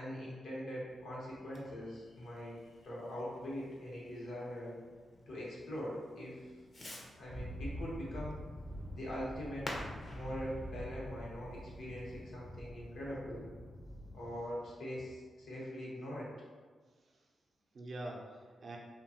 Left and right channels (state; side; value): normal; both; correlation 0.87